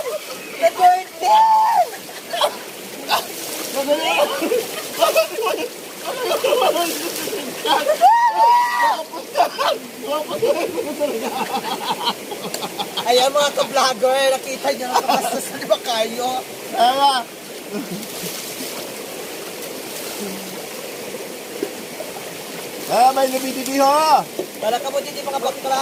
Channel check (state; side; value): identical; both; correlation 1.00